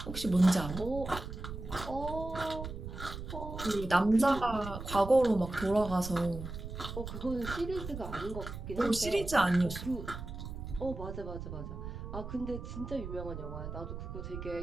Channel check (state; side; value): noise; right; rumble, 8 dB below the sound